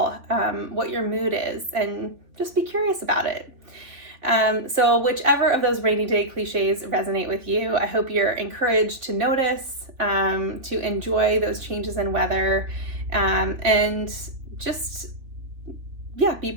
what your mood is, and just be curious about it. So whichever of those rainy day cliches resonate with you, I hope you're encouraged to notice, to enjoy those changes in weather, and just, yeah, be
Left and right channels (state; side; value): late; left; 3.5 ms